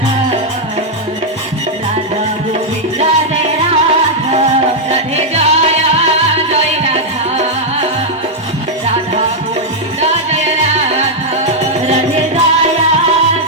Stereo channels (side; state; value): both; normal; correlation -0.03